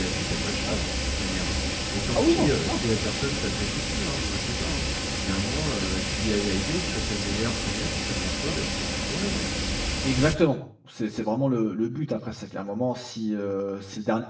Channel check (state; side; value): identical; both; correlation 1.00